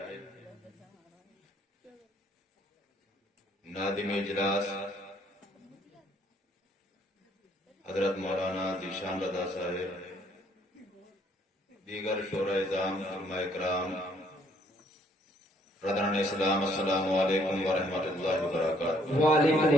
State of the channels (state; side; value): normal; both; correlation 0.65